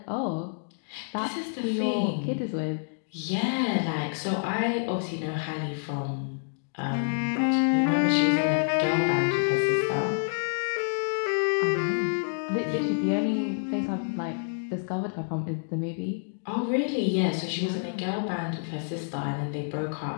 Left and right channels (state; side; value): silent; right; digital silence